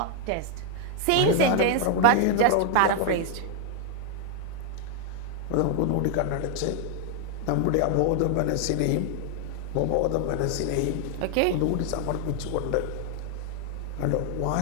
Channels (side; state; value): both; different; correlation 0.00